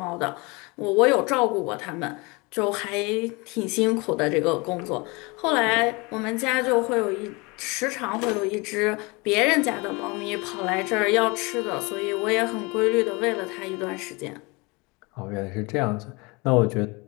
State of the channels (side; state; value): right; quieter; 26.8 dB